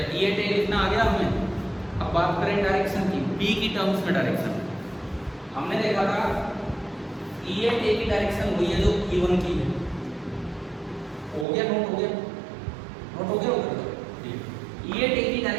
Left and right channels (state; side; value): drops out; left; at 11.5 s